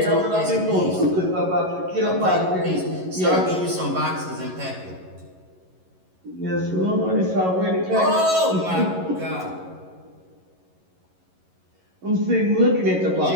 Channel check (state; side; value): late; left; 11 ms